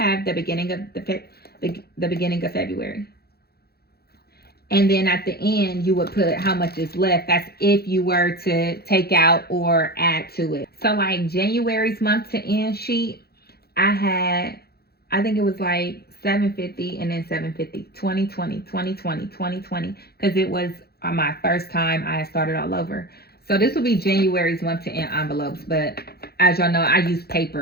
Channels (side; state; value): right; late; 0.46 ms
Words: the beginning of the beginning of February. And then at the end, you would put how much is left. That's if you were to take out or add to it. So like January's month to end sheet, I think it was like $750 and then $750, 2020, 2020, 2020, because it was my first time I had started all over. So this will be January's month to end envelopes, but as y'all know, I used